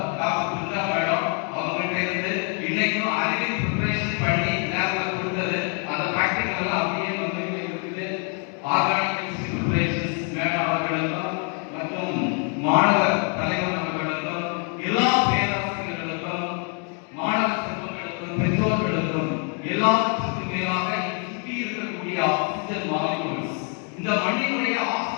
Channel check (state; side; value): quieter; right; 39.9 dB